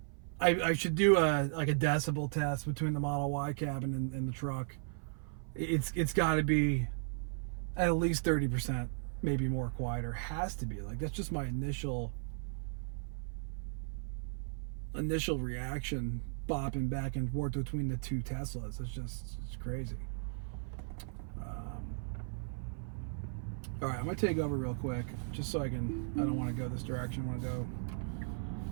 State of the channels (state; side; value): silent; left; 54 dB below the other